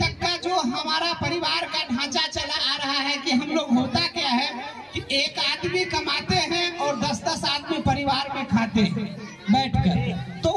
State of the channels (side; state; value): both; identical; correlation 1.00